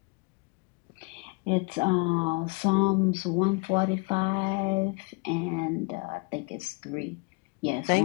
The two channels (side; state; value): right; quieter; 31.4 dB